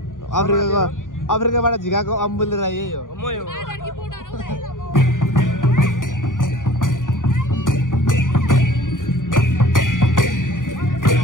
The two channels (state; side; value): late; right; 0.88 ms